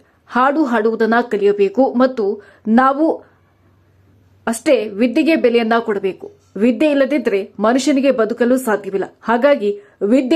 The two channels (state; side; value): identical; both; correlation 1.00